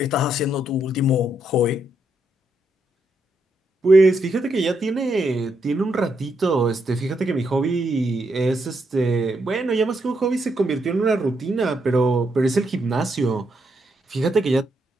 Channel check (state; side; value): normal; both; correlation 0.78